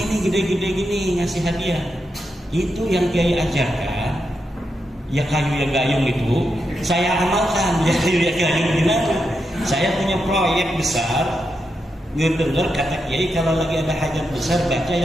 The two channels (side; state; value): both; normal; correlation 0.85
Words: gede-gede gini ngasih hadiah? Itu yang kiai ajarkan, ya kayu ya gayung itu saya amalkan. Ya kayu ya gayung gimana? Saya punya proyek besar, ngedenger kata kiai kalau lagi ada hajat besar baca